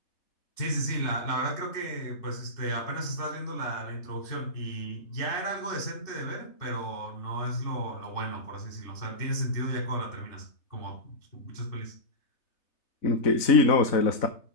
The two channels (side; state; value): right; late; 3.3 ms